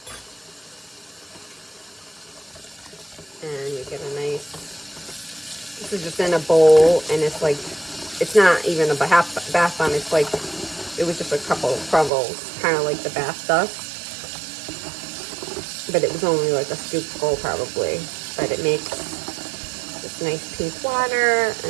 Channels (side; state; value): left; drops out; at 12.1 s